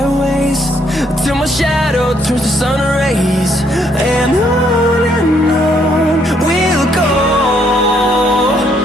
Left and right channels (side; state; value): both; normal; correlation 0.70